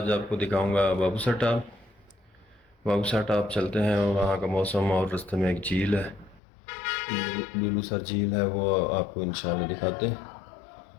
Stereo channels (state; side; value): drops out; right; at 6.4 s